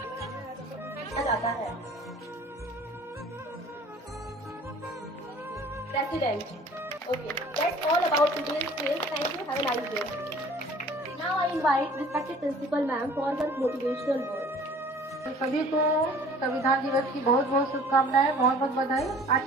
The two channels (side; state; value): both; normal; correlation 0.49